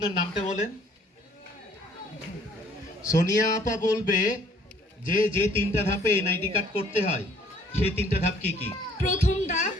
নামটা বলেন। সোনিয়া আপা বলবে যে যে তিনটা ধাপে এনআইডি কার্ড করতে হয় সেই তিনটা ধাপ কি কি? প্রথম ধাপ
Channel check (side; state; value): both; normal; correlation 0.59